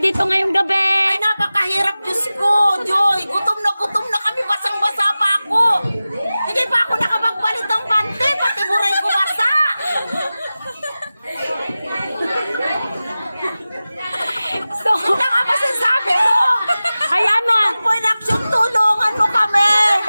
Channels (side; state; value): both; inverted; correlation -0.96